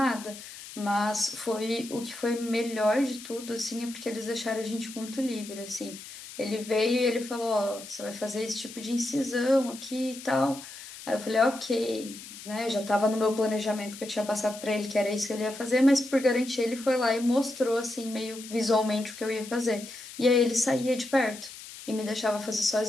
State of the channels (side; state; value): left; noise; hiss, 14 dB below the sound